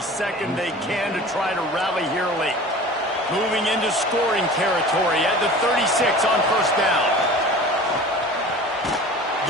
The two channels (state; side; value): normal; both; correlation 0.40